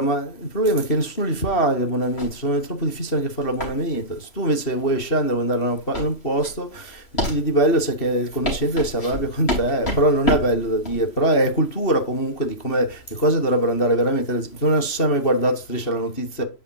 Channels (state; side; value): late; right; 3.0 ms